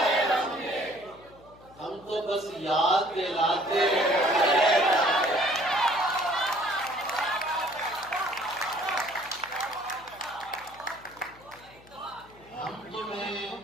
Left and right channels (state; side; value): noise; left; hum, 24 dB below the sound